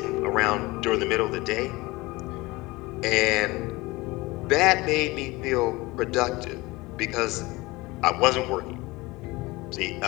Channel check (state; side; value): quieter; right; 21.9 dB